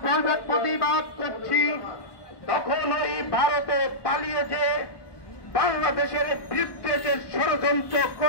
প্রতিবাদ করছি, তখন এই ভারতে পালিয়ে যে বাংলাদেশের বিরুদ্ধে যে ষড়যন্ত্র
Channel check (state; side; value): late; right; 1.2 ms